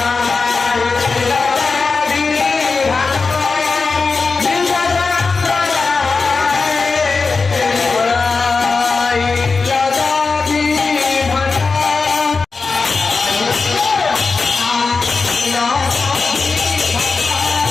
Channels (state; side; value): quieter; right; 4.4 dB